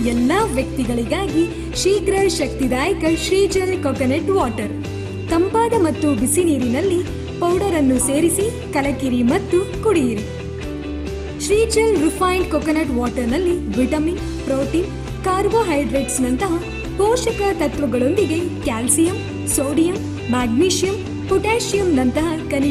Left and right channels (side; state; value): both; identical; correlation 1.00